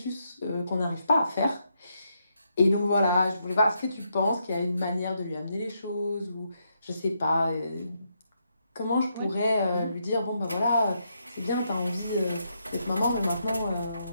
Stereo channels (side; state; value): both; inverted; correlation -0.79